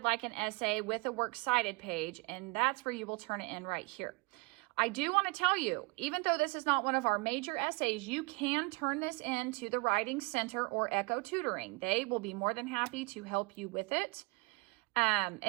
like an essay with a works cited page, and that's where you will turn it in right here. I do want to tell you, even though this is not one of our major essays, you can turn this into the Writing Center or Echo Tutoring. They will be more than happy to help you with it. And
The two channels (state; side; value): quieter; left; 26.3 dB